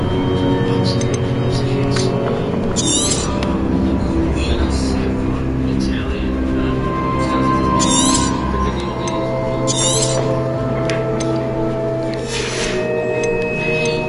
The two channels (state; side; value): identical; both; correlation 1.00